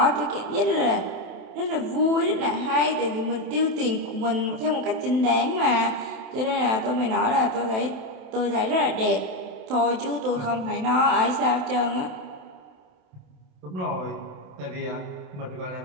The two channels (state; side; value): late; left; 27 ms